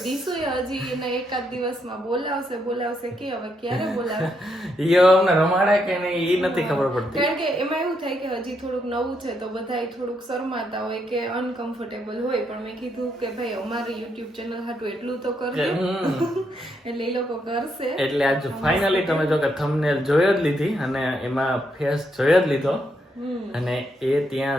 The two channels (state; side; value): normal; both; correlation 0.78